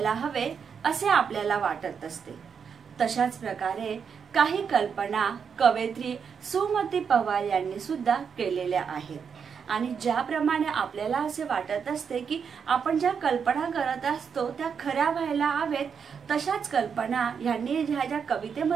हवे असे आपल्याला वाटत असते, तशाच प्रकारे काही कल्पना कवयित्री सुमती पवार यांनी सुद्धा केलेल्या आहेत। आणि ज्याप्रमाणे आपल्याला असे वाटत असते की आपण ज्या कल्पना करत असतो त्या खऱ्या व्हायला हवेत, तशाच कल्पना यांनी ज्या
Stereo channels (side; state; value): left; quieter; 6.7 dB